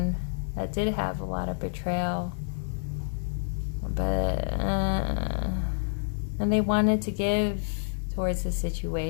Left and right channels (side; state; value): right; silent; 58 dB below the other